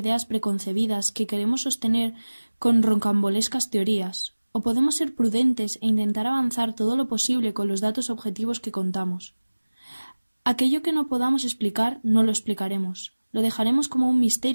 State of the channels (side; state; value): both; inverted; correlation -1.00